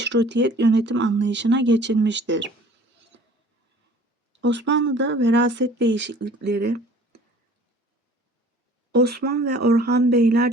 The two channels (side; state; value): both; normal; correlation 0.49